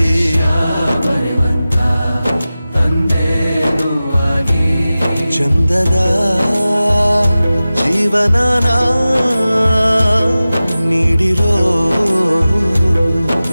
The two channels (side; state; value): both; inverted; correlation -0.96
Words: ಬರೆವಂತ ತಂದೇನೂ ಆಗಿ ಚಂದದ ಜೀವನನ ನೀಡಿರೋ